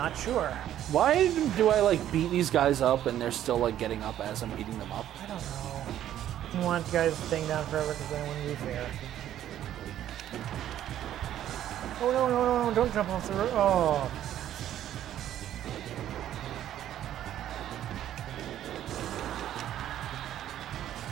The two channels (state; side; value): quieter; left; 11.6 dB